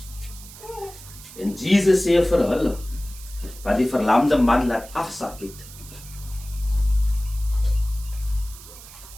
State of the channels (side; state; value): right; noise; hiss, 17 dB below the sound